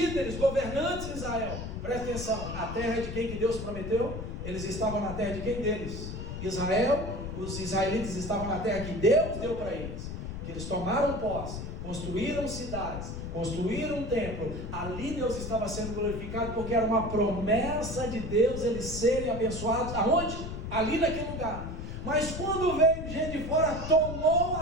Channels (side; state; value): left; noise; rumble, 7 dB below the sound